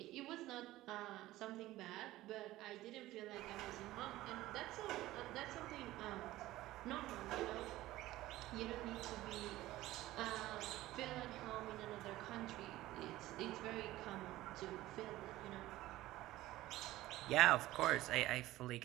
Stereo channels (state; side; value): quieter; left; 16.4 dB